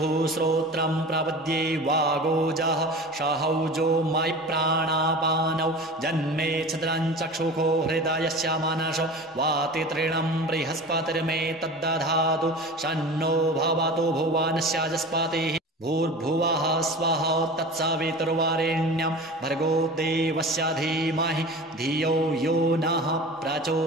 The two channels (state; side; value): normal; both; correlation 0.35